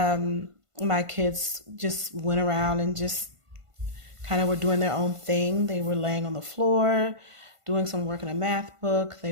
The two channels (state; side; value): late; left; 1.5 ms